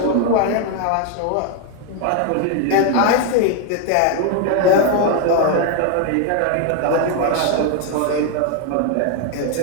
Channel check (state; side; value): different; both; correlation 0.01